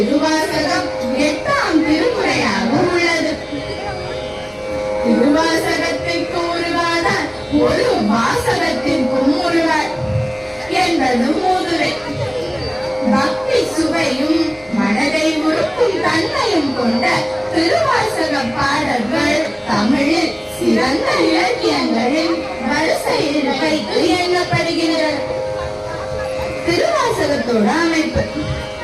8ஆம் திருமுறையாக உள்ளது. திருவாசகத்திற்கு உருவாதார் ஒரு வாசகத்திற்கும் உருவார் என்பது மூதுரை. பக்தி சுவையும் மனதை உருக்கும் தன்மையும் கொண்ட திருவாசக பாடல்கள் தமிழில் சிறந்த இலக்கியங்களின் வரிசையில் வைத்து எண்ணப்படுகின்றன. திருவாசகத்தோட அமைப்பு.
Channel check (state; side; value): identical; both; correlation 1.00